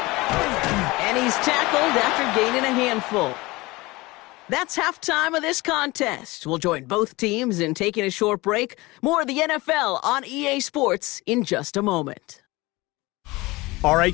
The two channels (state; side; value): quieter; right; 21.8 dB